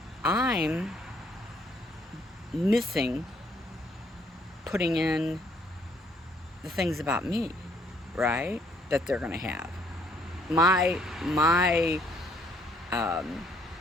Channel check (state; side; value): normal; both; correlation 0.66